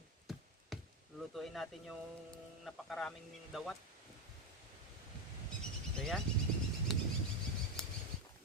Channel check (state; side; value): normal; both; correlation 0.10